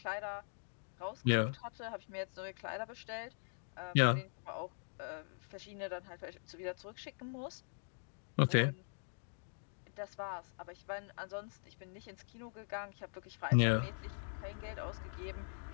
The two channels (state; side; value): silent; right; digital silence